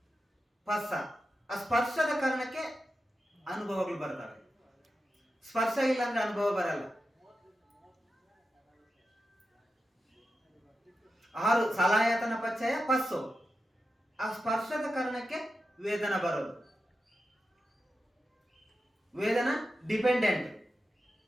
ಪಸ್ಸ. ಆ ಸ್ಪರ್ಶದ ಕಾರಣಕ್ಕೆ ಅನುಭವಗಳು ಬರ್ತವೆ. ಸ್ಪರ್ಶ ಇಲ್ಲ ಅಂದ್ರೆ ಅನುಭವ ಬರಲ್ಲ. 6 ಸಲಾಯತನ ಪಚ್ಚಯ ಪಸ್ಸು. ಆ ಸ್ಪರ್ಶದ ಕಾರಣಕ್ಕೆ ವೇದನ ಬರೋದು. ವೇದನ ಡಿಪೆಂಡೆಂಟ್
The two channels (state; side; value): normal; both; correlation 0.90